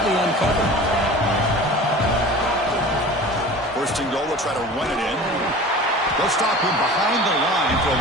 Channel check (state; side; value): normal; both; correlation 0.39